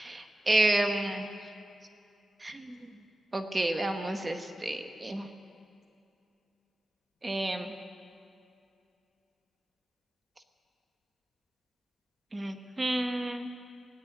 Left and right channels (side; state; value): both; normal; correlation 0.95